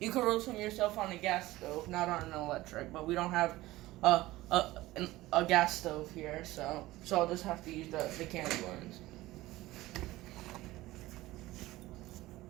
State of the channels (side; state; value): left; quieter; 17.7 dB